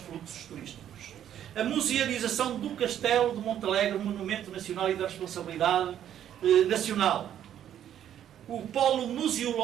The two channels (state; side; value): quieter; left; 10.5 dB